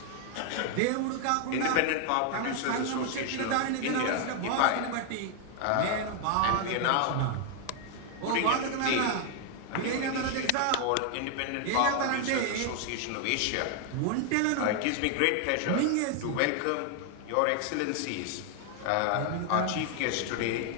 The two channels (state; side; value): different; both; correlation 0.00